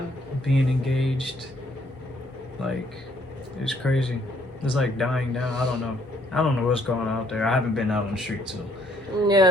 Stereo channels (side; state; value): both; normal; correlation 0.66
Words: Being engaged, like, it's crazy. It's like dying down. I don't know what's going on out there. I haven't been out on the street, so.